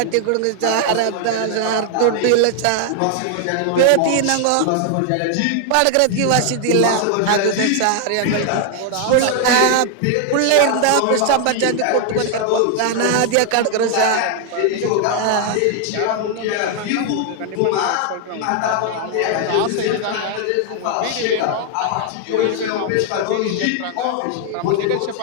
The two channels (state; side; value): different; both; correlation 0.00